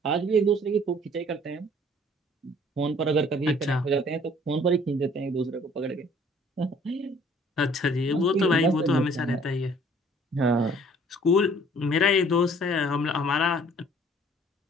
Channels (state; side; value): normal; both; correlation 0.56